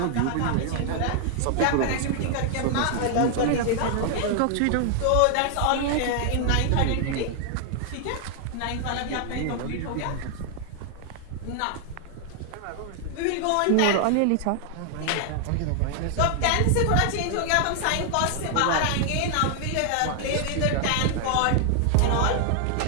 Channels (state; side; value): different; both; correlation 0.00